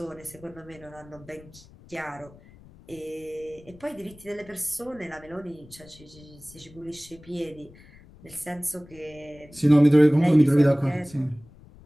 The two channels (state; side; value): noise; left; rumble, 23 dB below the sound